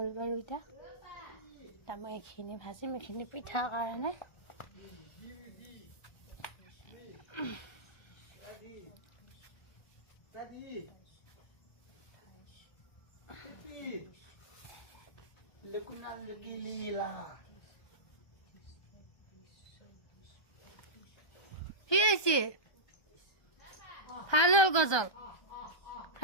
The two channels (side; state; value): right; late; 1.2 ms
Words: বাৰু এতিয়া। মই এইখিনি ভাজিম, এইখিনি পিঠাৰ কাৰণে। কি হয়েছে ভালো গজল